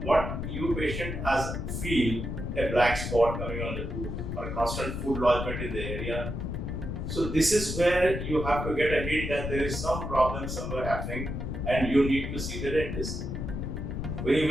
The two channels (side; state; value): left; noise; rumble, 4 dB below the sound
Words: what you patient has feel a black spot coming on the tooth or a constant food lodgement in the area. So this is where you have to get a hint that there is some problem somewhere happening and you need to see the dentist. When you